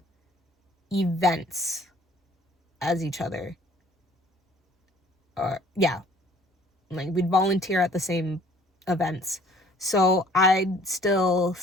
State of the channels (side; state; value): both; normal; correlation 0.56